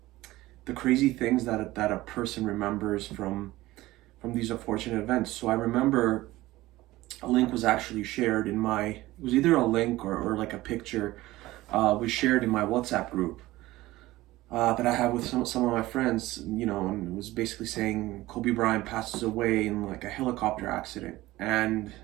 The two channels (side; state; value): left; quieter; 17.8 dB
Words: crazy things that a person remembers from these unfortunate events. So I remember a link was actually shared in it was either a link or like a picture was shared in my WhatsApp group that I have with some of my friends, and it was basically saying Kobe Bryant passes away in like a helicopter accident. And